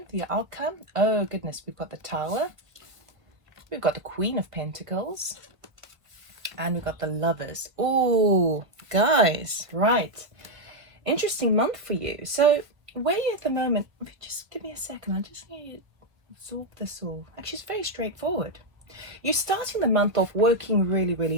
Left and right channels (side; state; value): left; late; 1.5 ms